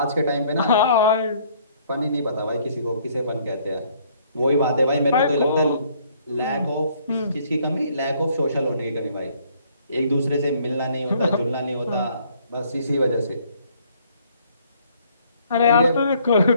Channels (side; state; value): both; inverted; correlation -0.63